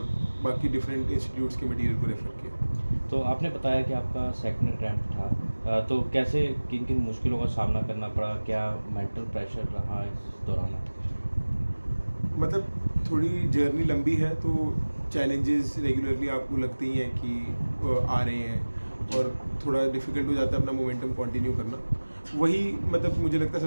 बाकी डिफरेंट इंस्टीट्यूट्स के मटेरियल को रेफ़र किया। तो आपने बताया कि आपका सेकंड अटेम्प्ट था। तो कैसे किन किन मुश्किलों का सामना करना पड़ा? क्या मेंटल प्रेशर रहा इस दौरान आपके? मतलब थोड़ी जर्नी लंबी है, तो चैलेंजेस रेगुलरली आपको लगते ही हैं कि आ रहे हैं, जी। और थोड़ा डिफ़िकल्ट हो जाता है अपना मोमेंटम कंटिन्यू करना। वही मतलब मुझे लगता है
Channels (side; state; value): both; inverted; correlation -1.00